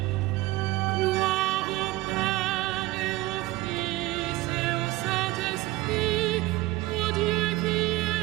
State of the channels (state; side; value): quieter; left; 18.6 dB